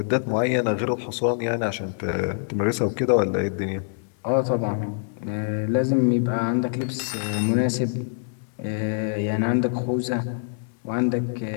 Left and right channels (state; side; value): silent; right; 62 dB below the other